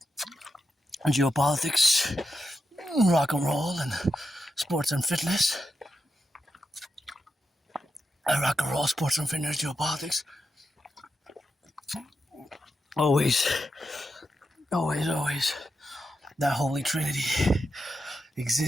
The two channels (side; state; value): both; normal; correlation 0.86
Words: Geopolitics, rock and roll, and sports and fitness. Rock and roll, sports and fitness, geopolitics. Always, always, always. That holy trinity